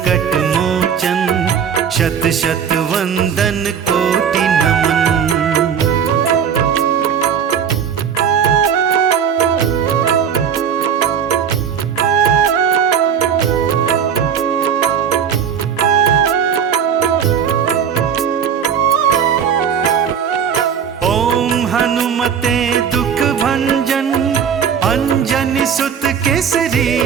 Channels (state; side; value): quieter; left; 7.8 dB